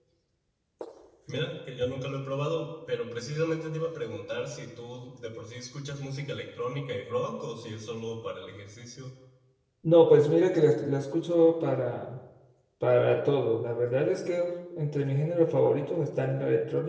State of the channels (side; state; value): both; identical; correlation 1.00